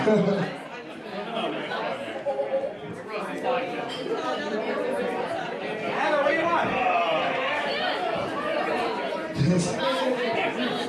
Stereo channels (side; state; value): both; identical; correlation 1.00